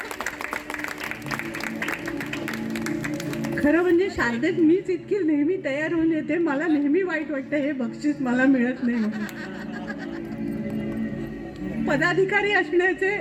खरं म्हणजे शारदेत मीच इतकी नेहमी तयार होऊन येते, मला नेहमी वाईट वाटतं हे बक्षीस मला मिळत नाही म्हणून. पदाधिकारी असण्याचे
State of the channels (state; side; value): identical; both; correlation 1.00